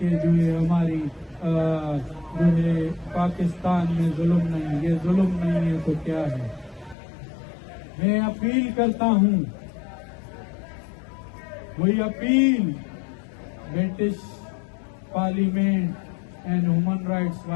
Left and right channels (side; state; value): right; drops out; at 7.0 s